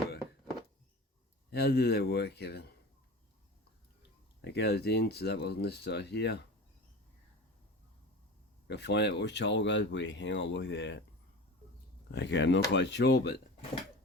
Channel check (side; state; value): both; normal; correlation 0.34